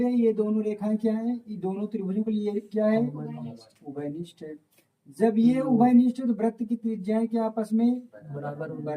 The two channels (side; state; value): both; identical; correlation 1.00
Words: ये दोनों रेखाएं क्या है? ये दोनों त्रिभुजों के लिए क्या है? उभयनिष्ठ है। जब ये उभयनिष्ठ है तो वृत्त की त्रिज्याएं क्या आपस में